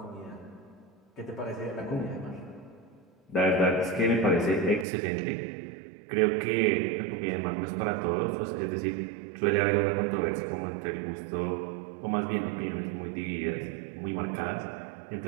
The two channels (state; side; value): drops out; left; at 4.9 s